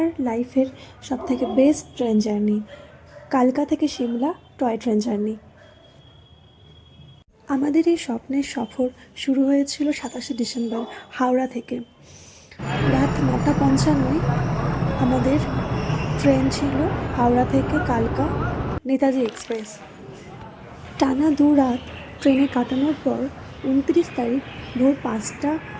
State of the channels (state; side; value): identical; both; correlation 1.00